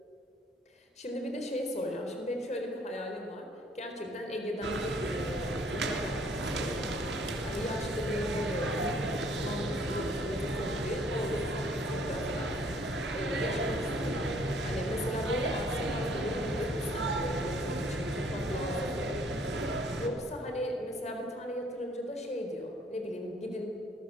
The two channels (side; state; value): both; normal; correlation 0.61